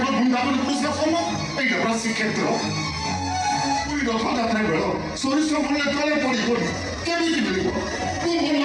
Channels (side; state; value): both; identical; correlation 1.00